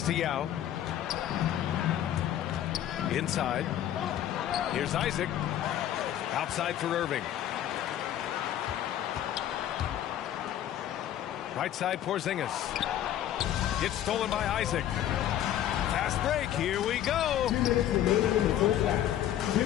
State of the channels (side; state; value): right; quieter; 11.6 dB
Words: to Yao. Inside. Here's Isaac. Outside for Irving. Right side, Porzingis. Gets stolen by Isaac. Fast break. Here we go. 2 minutes remaining in the first half. 2